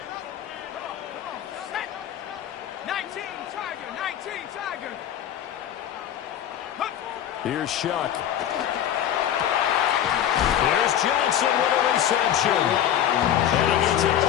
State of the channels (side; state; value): right; quieter; 10.6 dB